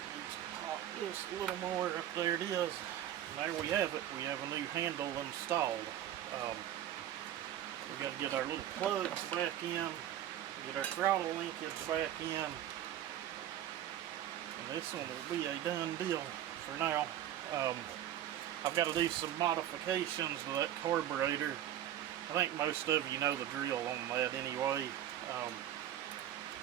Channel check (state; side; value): quieter; left; 11.7 dB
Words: needs to pop just a little more. Up there it is. And there we have it. We have a new handle installed. We got to get our little plugs back in, get our throttle linkage back in, and this one will be a done deal for now. I've got to do some modifications to that carburetor. I think most of you know the drill on that anyway.